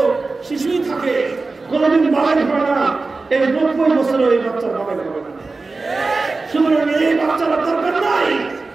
শিশুই থাকে, কোনদিন বালেগ হয় না, এই 90 বছরও এই বাচ্চার বালেগ হবে না। সুতরাং এই বাচ্চারা দরকার নাই।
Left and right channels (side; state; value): left; quieter; 3.8 dB